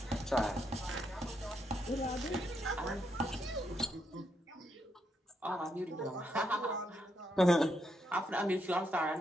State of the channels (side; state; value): both; normal; correlation 0.79